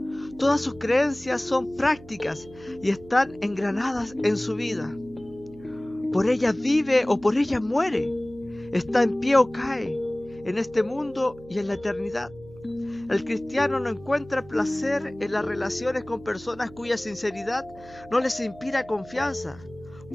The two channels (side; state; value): right; noise; hum, 20 dB below the sound